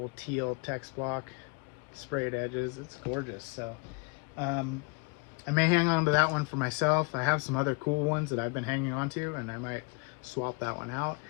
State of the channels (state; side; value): quieter; right; 30.1 dB